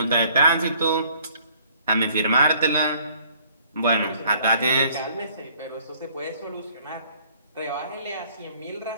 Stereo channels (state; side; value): inverted; both; correlation -0.60